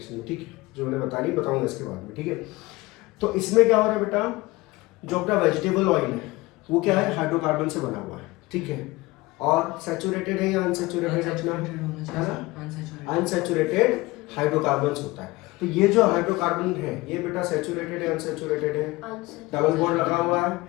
में, ठीक है, जो मैंने बताऊंगा इसके बाद में, ठीक है। तो इसमें क्या हो रहा है बेटा, जो अपना वेजिटेबल ऑयल है वो क्या है, हाइड्रोकार्बन से बना हुआ है, ठीक है, और सैचुरेटेड है या अनसैचुरेटेड अपना है ना, अनसैचुरेटेड हाइड्रोकार्बन्स होता है। तो ये जो हाइड्रोकार्बन है ये बेटा सैचुरेटेड है अनसैचुरेटेड है, डबल बॉन्ड लगा हुआ है,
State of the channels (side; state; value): right; quieter; 21.3 dB